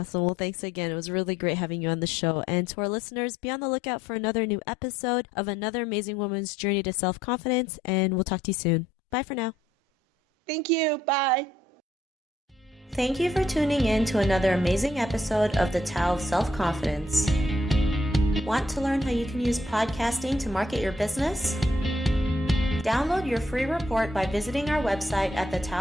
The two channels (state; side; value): normal; both; correlation 0.69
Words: Well, thanks again. It was really great having you on the show. And to our listeners, be on the lookout for another new episode of another amazing woman's journey to self-confidence. And we'll talk to you soon. Bye for now. Thank you. Bye. Thank you for tuning in to another amazing episode of the Tao of Self-Confidence. Want to learn how you can use podcasting to market your business? Download your free report by visiting our website at